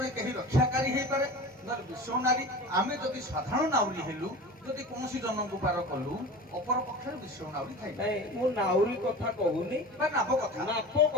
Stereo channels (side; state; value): both; normal; correlation 0.35